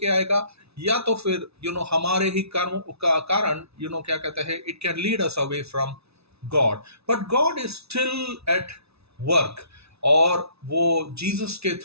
आएगा, या तो फिर हमारे ही कर्म का कारण क्या कहते हैं, it can lead us away from God. But God is still at work, और वो जीसस के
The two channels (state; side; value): late; left; 0.79 ms